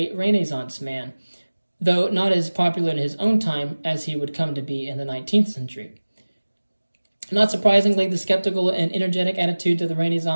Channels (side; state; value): both; inverted; correlation -1.00